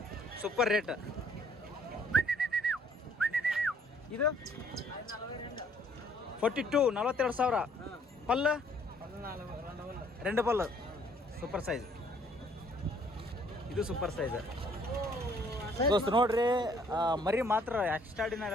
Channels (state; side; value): normal; both; correlation 0.62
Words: super rate ಇದು 42,000 ಪಲ್ಲು 2 ಪಲ್ಲು ಸೂಪರ್ ಸೈಜ್ ಇದು ಸೂಪರ್ ಸೈಜ್ ದೋಸ್ತ್ ನೋಡ್ರಿ ಮರಿ ಮಾತ್ರ